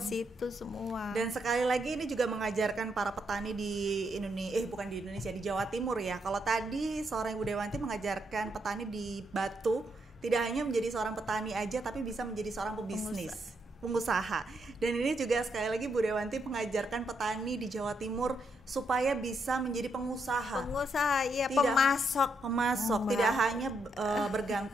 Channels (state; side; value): normal; both; correlation 0.78